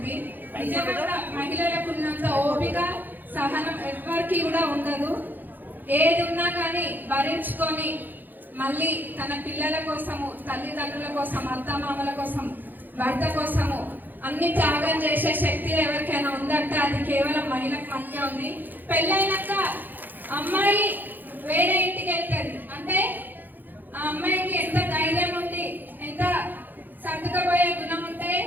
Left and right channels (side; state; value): left; late; 0.088 ms